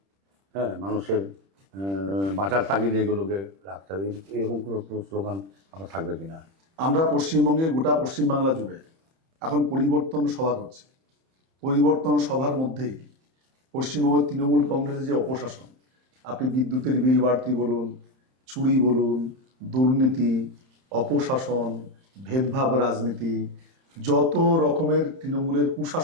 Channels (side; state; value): left; late; 31 ms